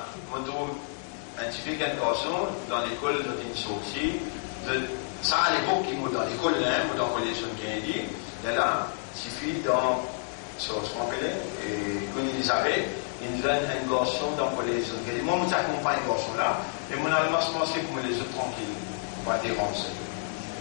on trouve un petit peu quelque garçon dans l'école de sortie. Ça, à l'époque, qui m'a dans l'école, dans le collège de Kennedy, là, il suffit dans ce qu'on appelle, et quand Elisabeth, il donne un garçon dans le collège de Kennedy. Moi, je t'accompagne ce garçon-là, et mon allemand se pensait pour me laisser tranquille, pas déranger.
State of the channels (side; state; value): right; silent; 59 dB below the other